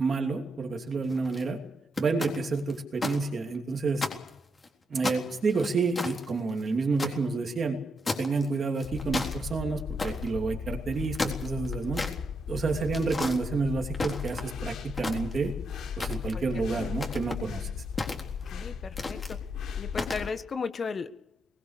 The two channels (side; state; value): both; normal; correlation 0.81